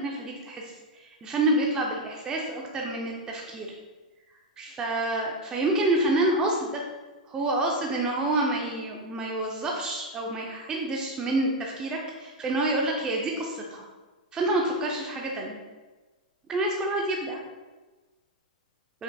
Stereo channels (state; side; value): normal; both; correlation 0.08